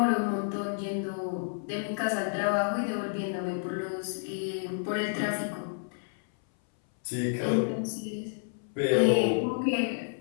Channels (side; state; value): right; silent; 58 dB below the other